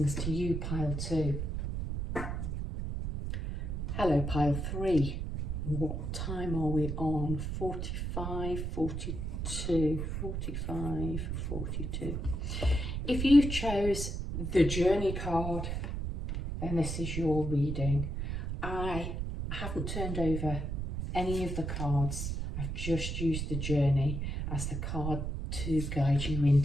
to you, pile 2. Hello, pile 3. What time are we on? 45, 42, 45, 42. If you chose the journey card, then this is your reading. I haven't turned over any of the cards. I've just used the journey as the card to guide you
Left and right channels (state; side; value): noise; right; rumble, 3 dB below the sound